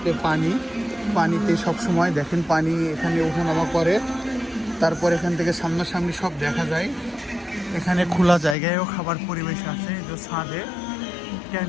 পানিতে সব সময় দেখেন পানি এখানে ওঠানামা করে। তারপর এখান থেকে সামনাসামনি সব দেখা যায়। এখানে খোলা জায়গায়ও খাবার পরিবেশ আছে। এই যে ছাদে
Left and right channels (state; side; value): drops out; right; at 8.6 s